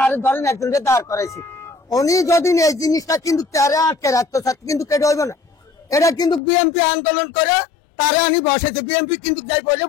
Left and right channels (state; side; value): drops out; right; at 6.4 s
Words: ধরেন একজনকে দাঁড় করাইছি। উনি যদি এই জিনিসটা কিন্তু তারা আটকে রাখতে চাচ্ছে, কিন্তু কেটে হইব না। এটা কিন্তু বিএনপি আন্দোলন করে তারা আমি বসাইছে, বিএনপি কিন্তু যাই বলে